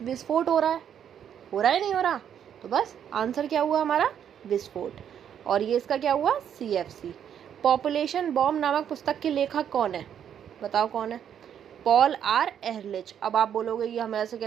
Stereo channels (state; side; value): quieter; left; 9.0 dB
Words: विस्फोट हो रहा है या नहीं हो रहा? तो बस आंसर क्या हुआ हमारा? विस्फोट। और ये इसका क्या हुआ? CFC। पॉपुलेशन बॉम्ब नामक पुस्तक के लेखक कौन है? बताओ कौन है? Paul R Ehrlich. अब आप बोलोगे ये हमें ऐसे